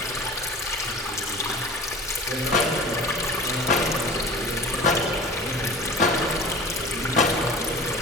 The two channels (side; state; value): both; normal; correlation 0.39